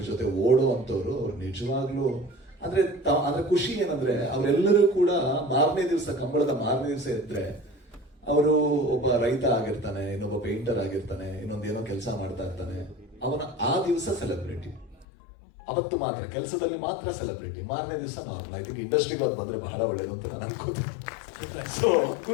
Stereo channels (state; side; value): drops out; right; at 15.1 s